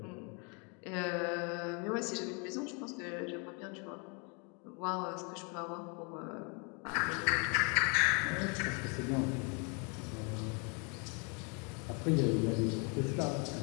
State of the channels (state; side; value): quieter; right; 34.6 dB